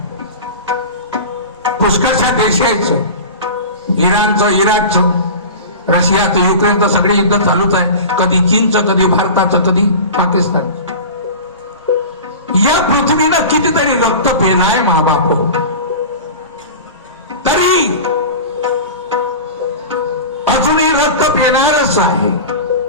पुष्कळशा देश आहेत, इराणचं, इराकचं, रशियाचं, युक्रेनचं, सगळे युद्ध चालूच आहे. कधी चीनचं, कधी भारताचं, कधी पाकिस्तान. या पृथ्वीनं कितीतरी रक्त पेलाय महाबाप, तरी अजूनही रक्त पेणारच आहे.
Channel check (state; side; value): inverted; both; correlation -0.32